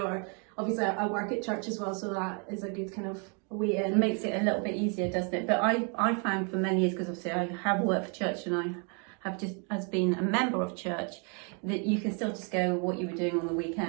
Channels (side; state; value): left; quieter; 36.9 dB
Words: obviously I work at church as well, so that is a good kind of way in. It makes it a little bit easier, doesn't it? But I found for many years, because obviously I have worked for church and I have just as been a member of church, that you can still just go what you were doing on the